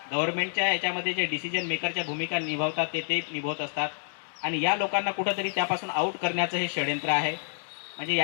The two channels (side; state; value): right; silent; 59 dB below the other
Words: गव्हर्नमेंटच्या याच्यामध्ये जे डिसिजन मेकरच्या भूमिका निभावतात ते निभावत असतात आणि या लोकांना कुठंतरी त्यापासून आउट करण्याचं हे षडयंत्र आहे. म्हणजे